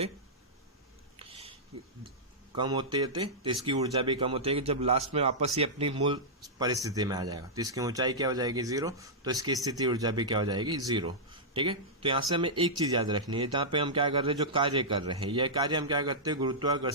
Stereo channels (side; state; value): both; normal; correlation -0.11